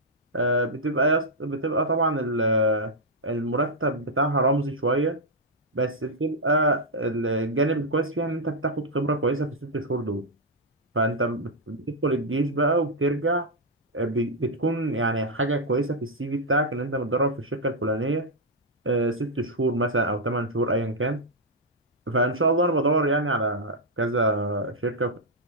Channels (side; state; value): both; normal; correlation -0.04